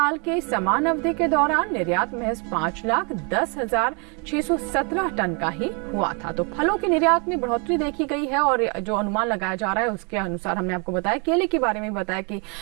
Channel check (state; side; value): quieter; left; 34.3 dB